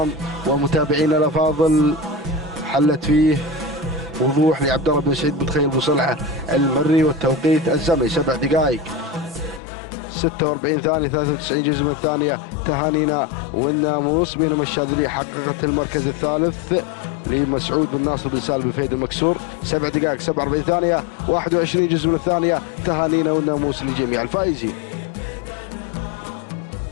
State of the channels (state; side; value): drops out; right; at 9.6 s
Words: ومتابعينا الافاضل، حلت فيه وضوح لعبد الله بن سعيد بن تخيل بصلعه المري والتوقيت الزمني 7 دقائق 46 ثانيه 93 جزء من الثانيه. تهانينا والناموس. بينما الشاذليه حققت المركز الثالث لمسعود بن ناصر بن سالم بن فهد المكسور 7 دقائق 47 ثانيه 21 جزء من الثانيه. تهانينا والناموس لجميع الفائزين.